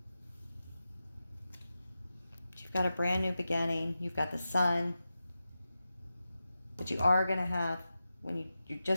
You've got a brand new beginning. You've got the sun. But you are going to have, you're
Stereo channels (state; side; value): inverted; both; correlation -0.92